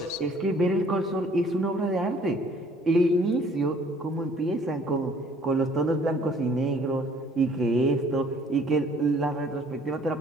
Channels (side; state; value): both; normal; correlation 0.58